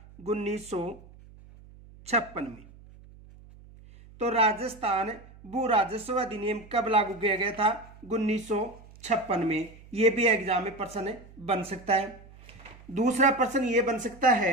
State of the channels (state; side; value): noise; right; hum, 22 dB below the sound